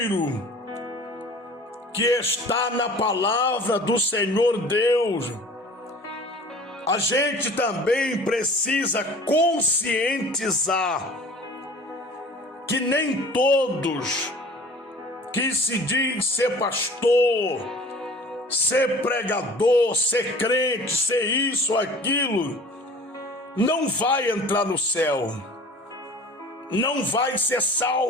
que está na palavra do Senhor Deus. A gente também precisa conscientizar que nem todos que se diz ser pastor, ser pregador, ser crente, ser isso, aquilo, não vai entrar no céu, não vai ser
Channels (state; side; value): normal; both; correlation 0.45